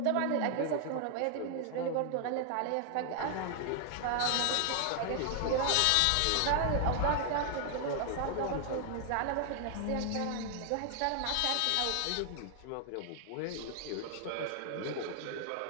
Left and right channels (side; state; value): both; different; correlation 0.00